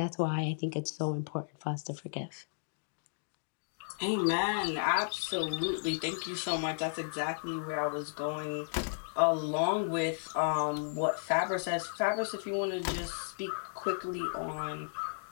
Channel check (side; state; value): right; silent; digital silence